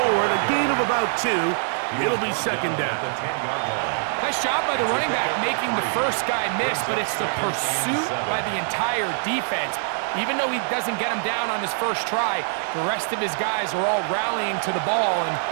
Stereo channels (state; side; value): silent; left; 63 dB below the other